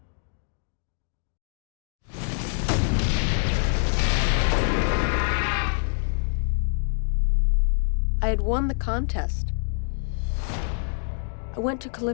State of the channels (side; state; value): right; silent; digital silence